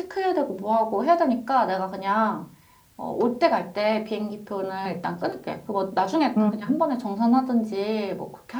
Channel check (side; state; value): both; identical; correlation 1.00